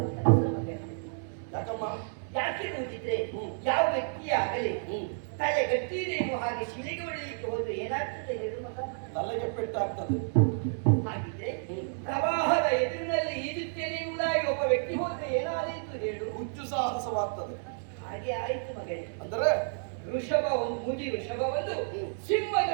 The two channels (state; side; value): silent; left; digital silence